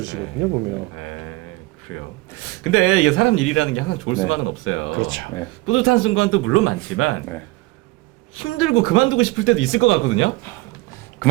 보면. 네, 그래요. 근데 이게 사람 일이라는 게 항상 좋을 네. 수만은 없어요. 그렇죠. 네. 뿌듯한 순간도 물론 많지만 네. 힘들고 그만두고 싶을 때도 있을 것 같거든요.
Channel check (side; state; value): left; quieter; 20.9 dB